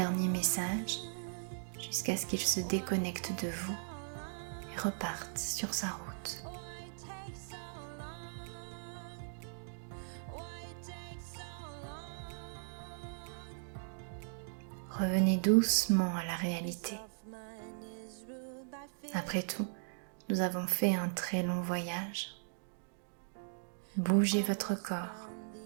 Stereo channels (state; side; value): silent; left; digital silence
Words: message jusqu'à ce qu'il se déconnecte de vous et reparte sur sa route. Revenez doucement à la réalité. Après tout, nous avons fait un très long voyage. Bougez votre corps,